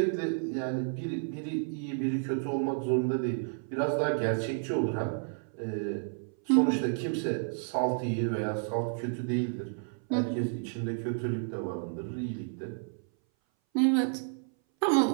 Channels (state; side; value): silent; left; 57 dB below the other